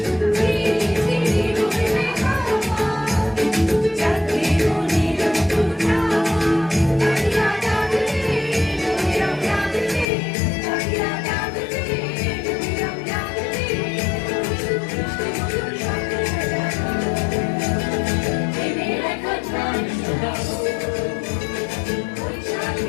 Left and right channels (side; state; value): right; drops out; at 10.1 s